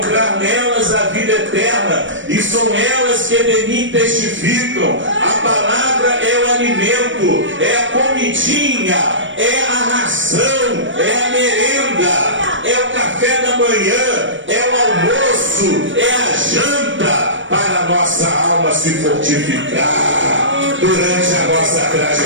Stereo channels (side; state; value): left; late; 0.56 ms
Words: nelas a vida eterna, e são elas que de mim testificam. A palavra é o alimento, é a comidinha, é a ração, é a merenda, é o café da manhã, é o almoço, é a janta para a nossa alma se fortificar durante a nossa